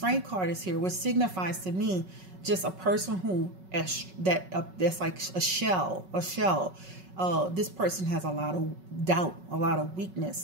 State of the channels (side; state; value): left; late; 5.4 ms